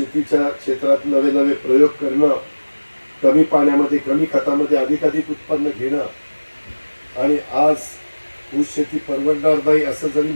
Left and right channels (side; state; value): both; inverted; correlation -1.00